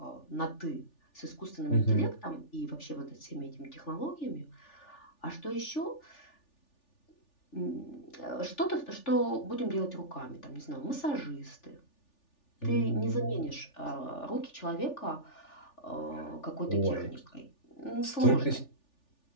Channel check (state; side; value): late; right; 3.4 ms